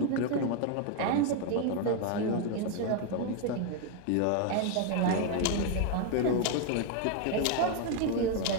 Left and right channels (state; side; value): different; both; correlation 0.01